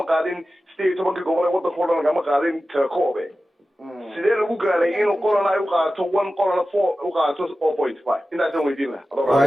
qaadin 18 gobol ee waddanka oo dhan lagama qaadin telecoom sidee lagu gaaray inuu qolan ay u qaato 1 qolan 4 u qaato 4.5 intaasaan weydiin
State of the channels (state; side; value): normal; both; correlation 0.94